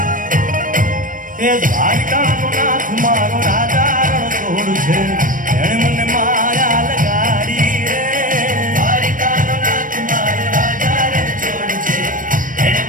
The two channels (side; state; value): left; late; 0.39 ms